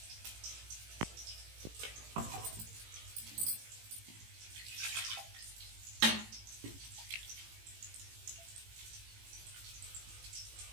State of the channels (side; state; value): left; late; 18 ms